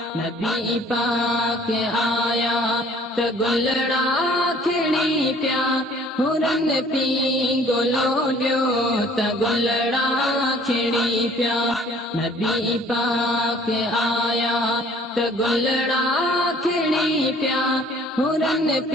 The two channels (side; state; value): both; normal; correlation 0.55